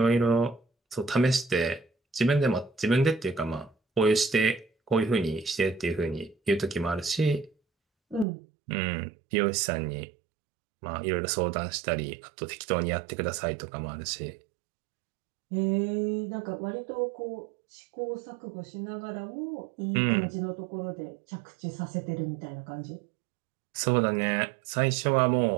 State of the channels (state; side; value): drops out; left; at 8.2 s